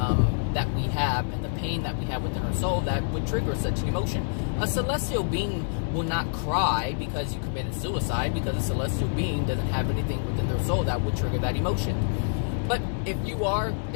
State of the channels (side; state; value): right; silent; digital silence